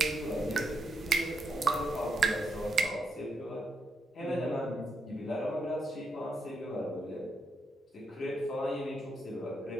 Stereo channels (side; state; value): both; normal; correlation 0.81